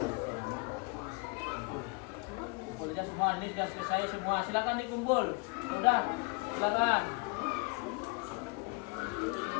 Kumpulnya semua, ini sudah selesai semua. Silakan dikumpul. Sudah, silakan.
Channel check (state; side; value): quieter; right; 29.6 dB